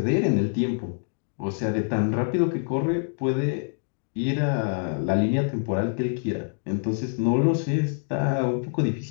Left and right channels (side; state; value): right; silent; digital silence